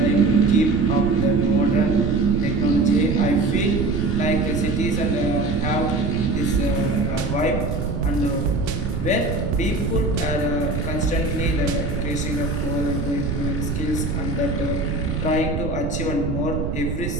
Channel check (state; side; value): noise; right; rumble, 2 dB below the sound